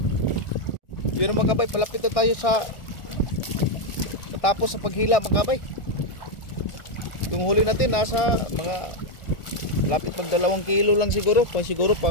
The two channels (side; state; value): right; late; 1.4 ms